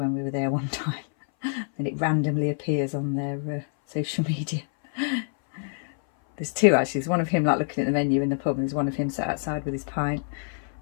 we were there one time, and it randomly appears on their social media. There's 2 actually. There's one of him like looking at the menu in the pub, and there's one of him sat outside with his pint.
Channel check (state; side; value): silent; right; 59 dB below the other